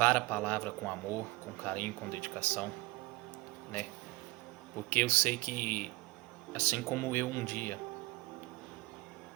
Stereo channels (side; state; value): left; quieter; 21.8 dB